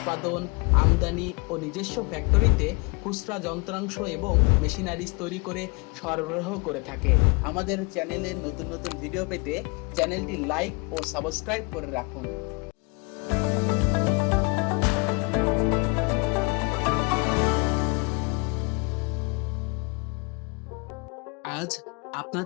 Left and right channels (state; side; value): quieter; right; 30.5 dB